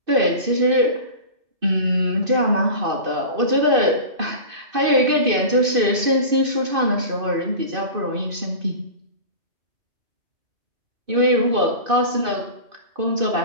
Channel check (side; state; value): left; late; 2.6 ms